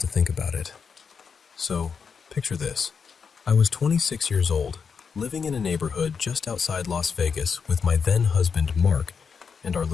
think about it. So, picture this. I was 26 years old, living in a neighborhood just outside Las Vegas with my then-husband Mark and our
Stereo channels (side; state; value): right; quieter; 6.0 dB